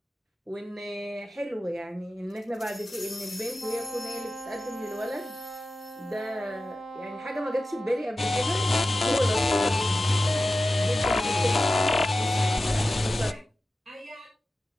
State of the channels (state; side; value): normal; both; correlation 0.94